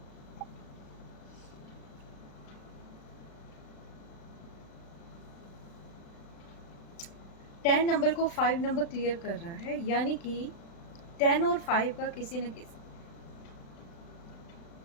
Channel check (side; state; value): right; late; 35 ms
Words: टेन नंबर को 5 नंबर क्लियर कर रहा है, यानी कि 10 और 5 का